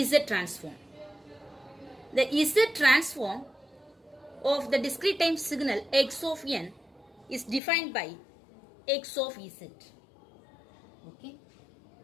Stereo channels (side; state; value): right; drops out; at 7.6 s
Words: transform. The Z transform of the discrete time signal x of n is defined by x of Z. Okay.